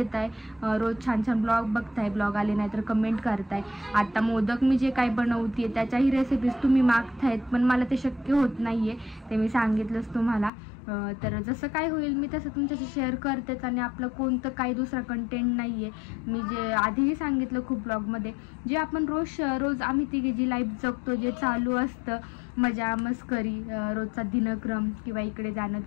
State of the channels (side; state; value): right; drops out; at 10.5 s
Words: रोज छान छान ब्लॉग बघताय, ब्लॉग आले नाही तर कमेंट करताय. आता मोदक मी जे काही बनवते त्याच्याही रेसिपीज तुम्ही मागतायत, पण मला ते शक्य होत नाही आहे, ते मी सांगितलंच तुम्हाला. तर जसं काय होईल मी तसं तुमच्याशी शेअर करतेच. आणि आपलं कोणतं काही दुसरा कंटेंट नाही आहे. मी जे आधीही सांगितलं खूप ब्लॉगमध्ये, जे आपण रोज आम्ही तिघे जी लाईफ जगतो, जे चालू असतं, मजा मस्करी, रोजचा दिनक्रम, किंवा इकडे जाणं